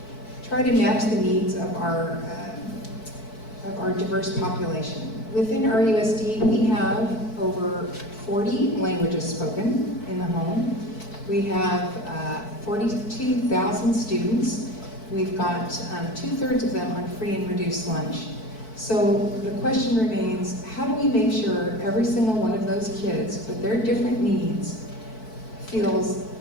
match the needs of our diverse population. Within RUSD, we have over 40 languages spoken in the home. We have 42,000 students. We've got 2/3 of them on free and reduced lunch. So the question remains, how do we make sure every single one of those kids with their different needs feels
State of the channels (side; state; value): right; late; 4.6 ms